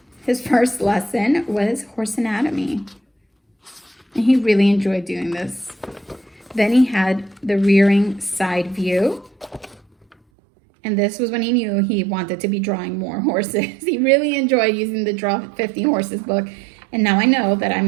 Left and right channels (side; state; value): left; drops out; at 10.2 s